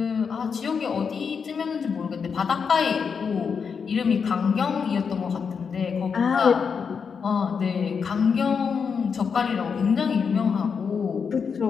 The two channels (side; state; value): right; quieter; 6.1 dB